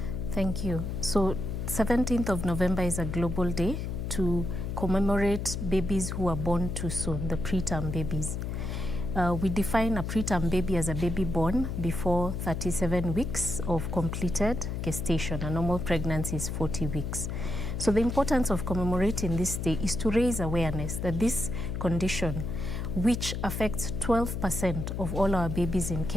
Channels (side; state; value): left; noise; hum, 4 dB below the sound